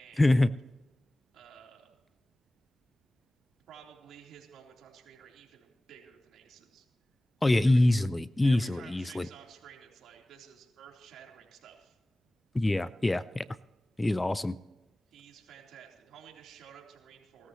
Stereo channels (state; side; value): normal; both; correlation 0.98